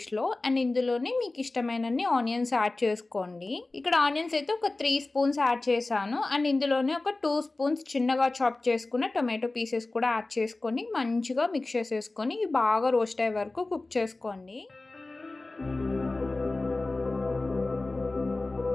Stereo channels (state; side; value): quieter; right; 3.1 dB